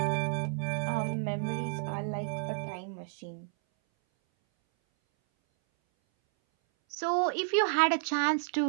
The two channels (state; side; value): silent; left; 57 dB below the other